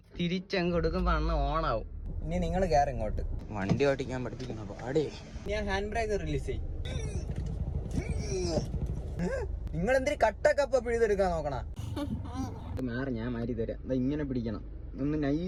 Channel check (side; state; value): both; identical; correlation 1.00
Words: തിരിച്ചങ്ങ് കൊടുക്കുമ്പോ അണ്ണ ഓണാവും. ഇനി നിങ്ങൾ കയറി ഇങ്ങോട്ട്. വണ്ടി ഓടിക്കാൻ പഠിപ്പിക്കുന്ന പാടേ. ഞാൻ ഹാൻഡ് ബ്രേക്ക് റിലീസ് ചെയ്യും. നിങ്ങൾ എന്തിനു കട്ടൊക്കെ അപ്പൊ പിഴുതെടുക്കാൻ നോക്കണ? മാറി, ഞാൻ മാറി തരാം. ഇങ്ങനെ പിടിക്കണം, ഒന്ന്